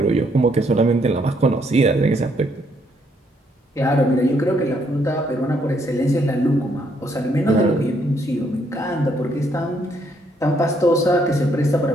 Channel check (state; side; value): normal; both; correlation 0.71